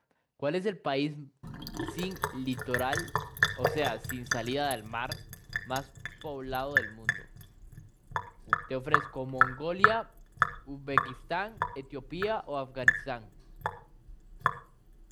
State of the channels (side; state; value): both; identical; correlation 1.00